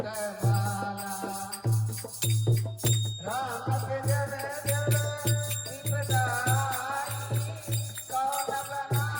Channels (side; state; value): both; identical; correlation 1.00